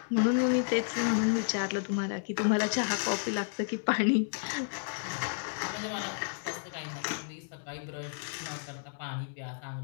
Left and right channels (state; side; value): silent; right; digital silence